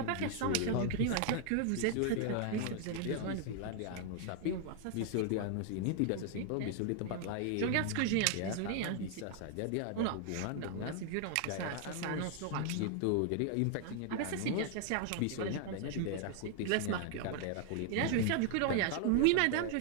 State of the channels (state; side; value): different; both; correlation 0.00